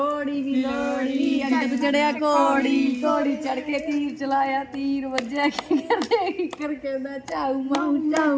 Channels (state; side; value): identical; both; correlation 1.00